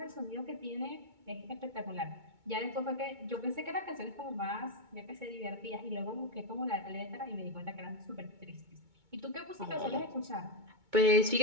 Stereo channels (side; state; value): left; late; 2.2 ms